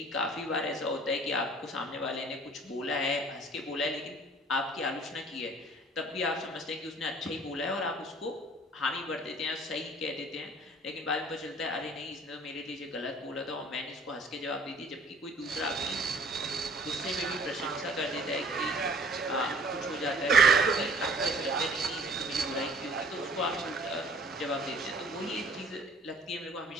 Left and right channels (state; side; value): normal; both; correlation 0.52